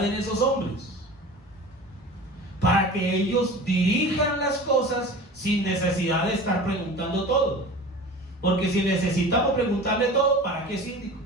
en esos hombres, para que ellos dirijan las cosas sin necesidad de estar preguntando todo. Porque si necesitamos preguntarle todo, ¿para qué síndicos?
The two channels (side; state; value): both; normal; correlation 0.37